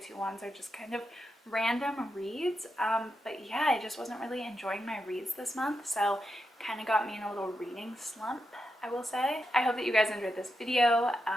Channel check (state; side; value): normal; both; correlation 0.86